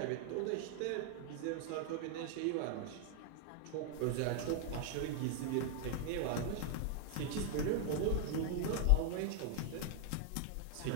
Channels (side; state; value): both; different; correlation 0.00